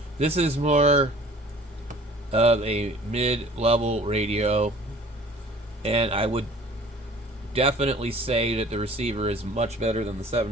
This is more of a mid-level radio, and I would definitely say that the receiver is much better than the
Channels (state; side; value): normal; both; correlation 0.49